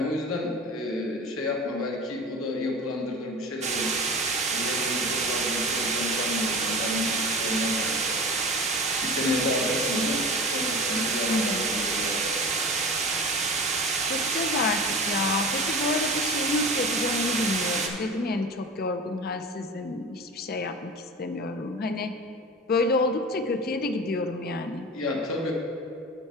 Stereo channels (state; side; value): normal; both; correlation 0.33